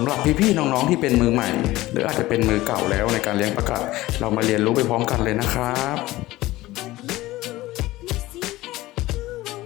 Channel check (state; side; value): quieter; right; 17.8 dB